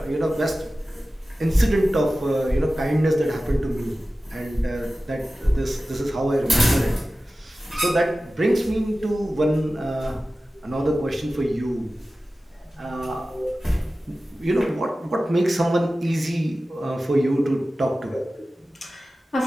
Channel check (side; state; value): both; normal; correlation 0.95